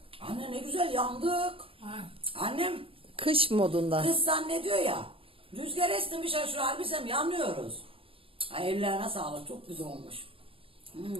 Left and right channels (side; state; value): left; late; 0.27 ms